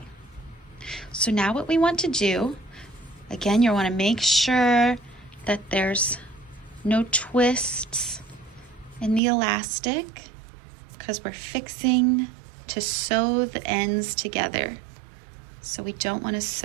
so now what we want to do, again, you want to make sure that there's no twists in the elastic because we're fixing to sew the ends together. So we don't want to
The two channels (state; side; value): drops out; left; at 9.2 s